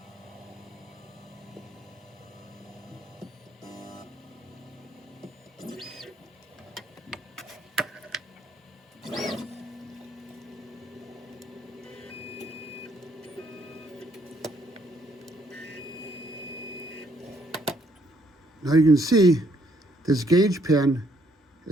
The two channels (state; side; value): normal; both; correlation 0.69